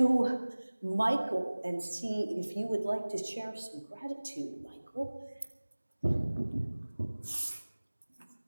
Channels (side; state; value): both; inverted; correlation -1.00